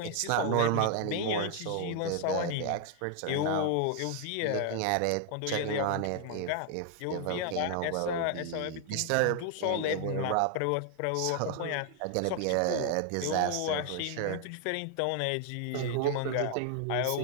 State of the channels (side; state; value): both; different; correlation 0.00